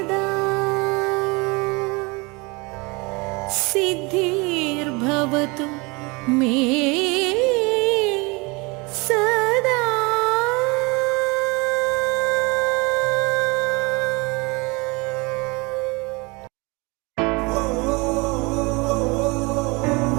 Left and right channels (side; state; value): left; quieter; 26.9 dB